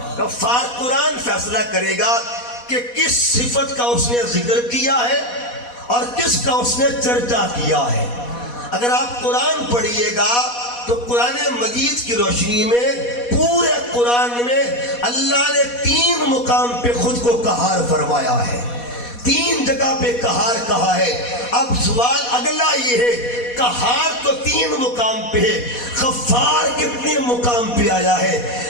غفار. قرآن فیصلہ کرے گا کہ کس صفت کا اس نے ذکر کیا ہے اور کس کا اس نے چرچا کیا ہے. اگر آپ قرآن پڑھیے گا تو قرآن مجید کی روشنی میں پورے قرآن میں اللہ نے 3 مقام پہ خود کو قہار فرمایا ہے، 3 جگہ پہ قہار کہا ہے. اب سوال اگلا یہ ہے قہار تو 3 مقام پہ ہے، غفار کتنے مقام پہ آیا ہے؟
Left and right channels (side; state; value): right; late; 4.2 ms